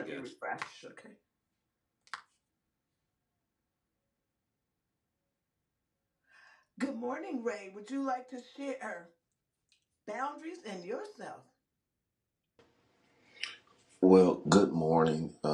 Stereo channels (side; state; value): both; identical; correlation 1.00